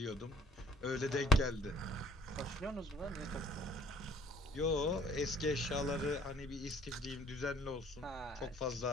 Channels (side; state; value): both; normal; correlation 0.57